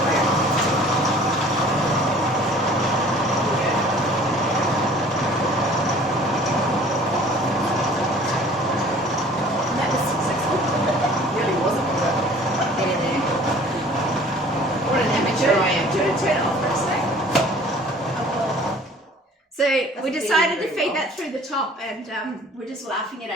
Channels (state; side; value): normal; both; correlation 0.50